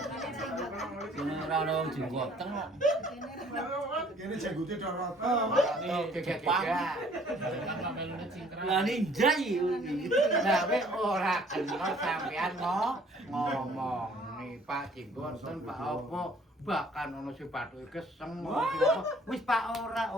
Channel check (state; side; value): normal; both; correlation 0.57